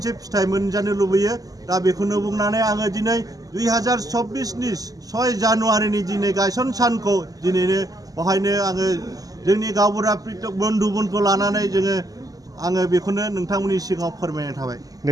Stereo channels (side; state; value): left; late; 0.17 ms